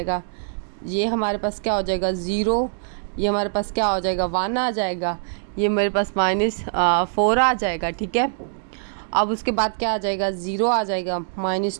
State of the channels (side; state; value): left; silent; digital silence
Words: ये हमारे पास क्या हो जाएगा 0, ये हमारे पास क्या हो जाएगा 1 आ जाएगा, ये मेरे पास -4 आ जाएगा, ठीक है। अब उसके बाद क्या आ जाएगा, 0 आ जाएगा,